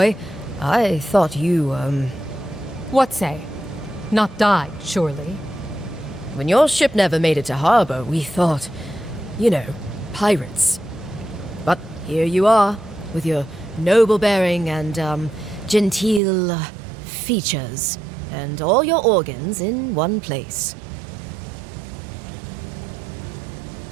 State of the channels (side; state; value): left; drops out; at 16.2 s